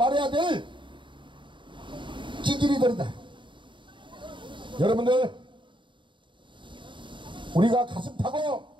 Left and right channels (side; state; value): left; late; 0.23 ms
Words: 될 찌질이들이다. 여러분들, 우리가 가슴 타고